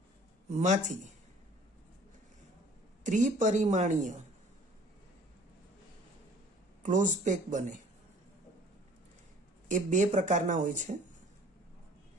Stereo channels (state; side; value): normal; both; correlation 0.52